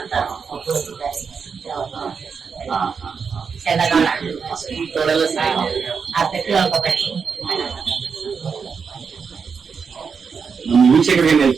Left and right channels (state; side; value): quieter; left; 5.8 dB